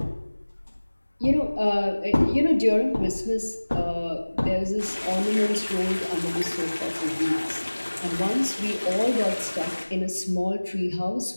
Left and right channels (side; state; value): both; inverted; correlation -1.00